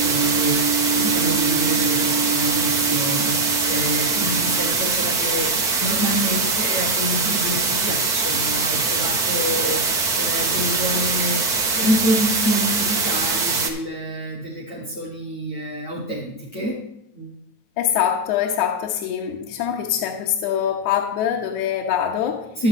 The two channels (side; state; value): right; late; 8.7 ms